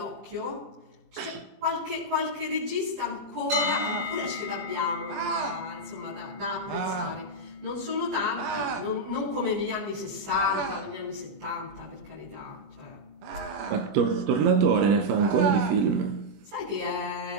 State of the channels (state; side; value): late; left; 20 ms